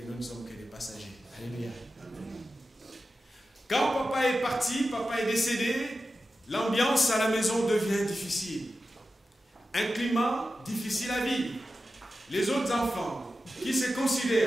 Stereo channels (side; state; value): both; normal; correlation 0.92